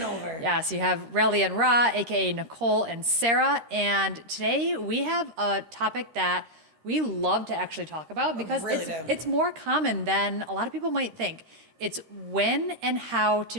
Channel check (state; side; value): late; left; 13 ms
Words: over. Yes, you have Relly and Ra, a.k.a. Nicole and Sarah. And today we have a topic that we love to actually talk about because it's more common than a lot of people might think. It's when and how to